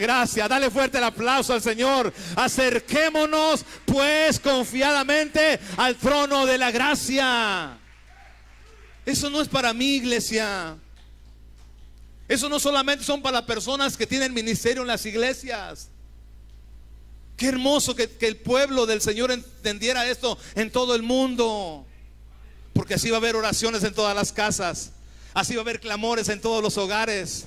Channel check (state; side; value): identical; both; correlation 1.00